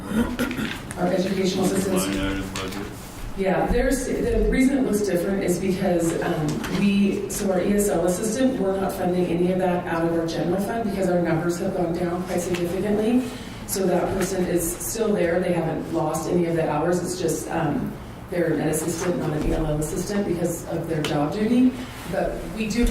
well? Our educational assistants. Line item budget? Yeah, the reason it looks different is because so our ESL assistant, we're not funding any of that out of our general fund because our numbers have gone down quite significantly. So that person is still there. They haven't lost any of the hours. It's just they're an assistant, not an ELL assistant because of their job duty. But we do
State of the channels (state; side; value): identical; both; correlation 1.00